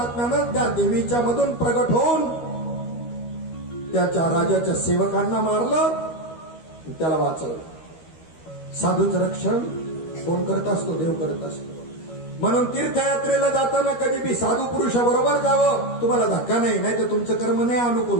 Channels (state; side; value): late; right; 13 ms